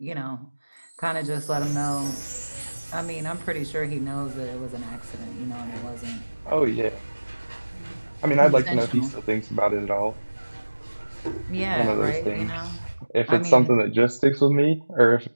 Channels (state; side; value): inverted; both; correlation -1.00